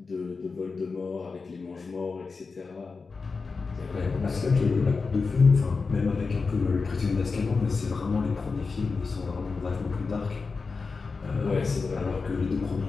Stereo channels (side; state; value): right; quieter; 4.5 dB